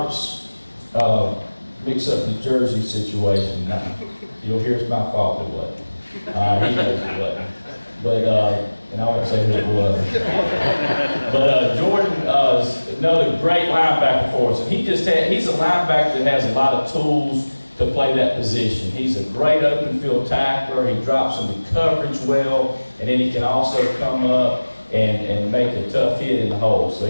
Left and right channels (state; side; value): inverted; both; correlation -1.00